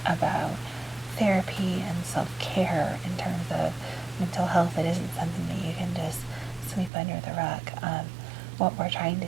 about therapy and self-care in terms of mental health. It isn't something that you can just sweep under the rug. What we're trying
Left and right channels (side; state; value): left; drops out; at 6.9 s